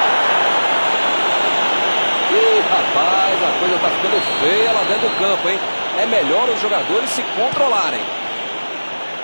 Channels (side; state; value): both; inverted; correlation -1.00